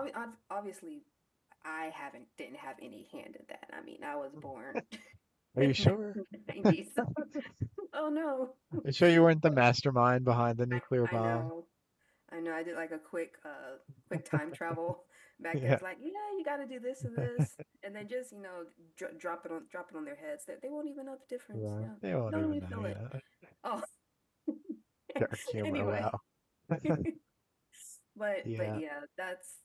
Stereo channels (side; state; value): both; identical; correlation 1.00